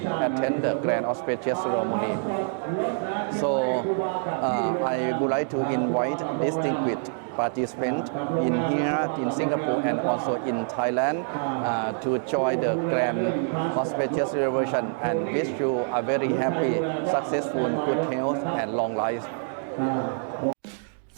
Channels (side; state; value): left; silent; digital silence